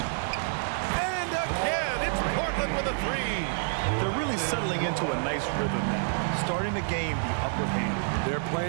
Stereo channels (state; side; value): silent; left; digital silence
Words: And again, it's Portland with a 3. They're really settling into a nice rhythm now, starting to gain the upper hand. They're